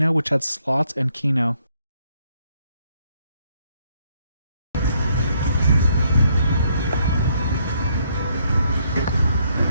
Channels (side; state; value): both; inverted; correlation -0.71